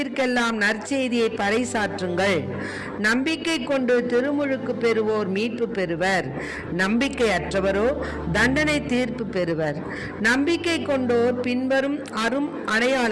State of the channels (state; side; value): identical; both; correlation 1.00